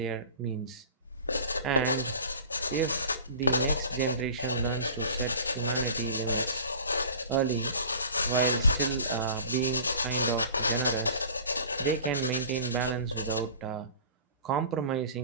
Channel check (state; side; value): inverted; both; correlation -0.41